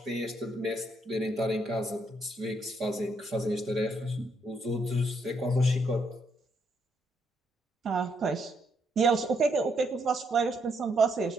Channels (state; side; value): normal; both; correlation 0.75